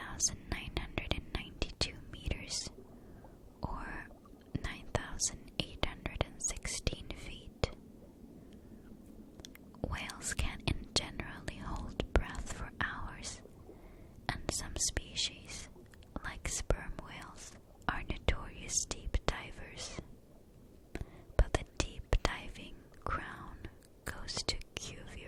meters, or 9,816 feet. Whales can generally hold breath for hours, and some species, like sperm whales, are notorious deep divers. But the deep diving crown goes to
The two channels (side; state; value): both; identical; correlation 1.00